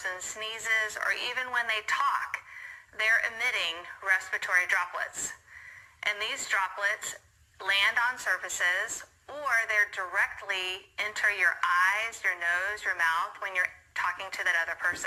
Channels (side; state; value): both; identical; correlation 1.00